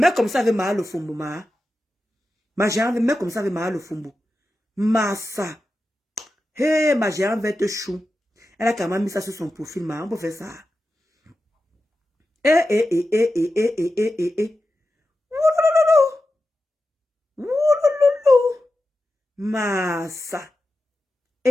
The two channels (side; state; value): both; normal; correlation 0.92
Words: comme ça avait mal au fombo, ma. Ma géante, mais comme ça avait mal au fombo. Massa. Hey, ma géante verte chou. Elle a quand même mis ça sur son profil, ma. On peut faire ça. Massa.